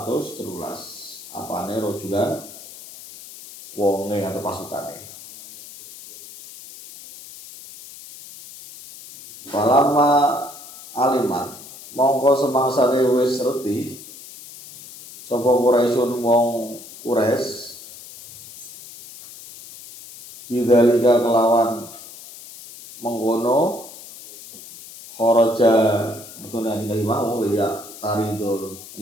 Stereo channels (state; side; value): noise; left; hiss, 16 dB below the sound